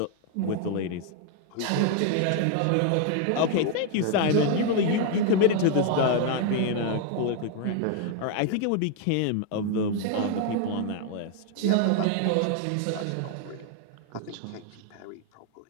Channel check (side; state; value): both; different; correlation 0.00